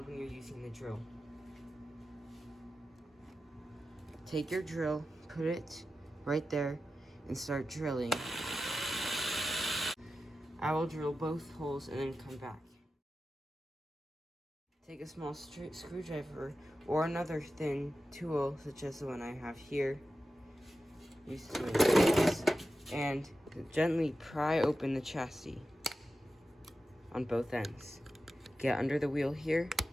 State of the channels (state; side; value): normal; both; correlation 0.92